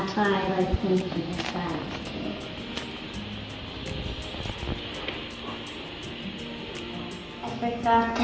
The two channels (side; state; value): both; identical; correlation 1.00